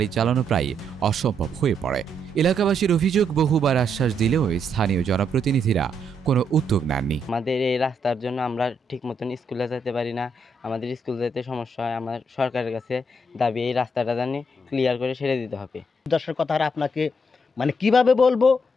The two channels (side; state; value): both; normal; correlation 0.76